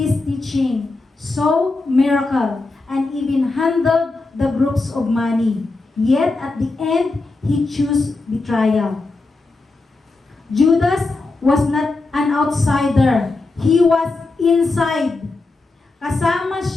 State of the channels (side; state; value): right; quieter; 3.4 dB